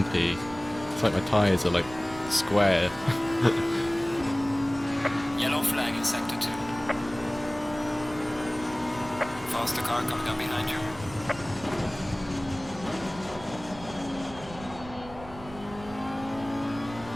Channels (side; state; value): right; noise; rumble, 16 dB below the sound